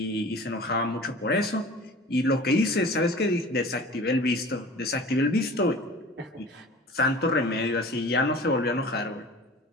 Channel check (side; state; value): both; normal; correlation 0.41